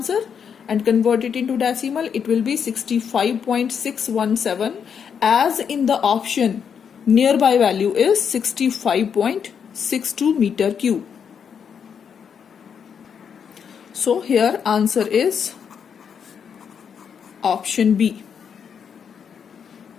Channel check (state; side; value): quieter; right; 7.2 dB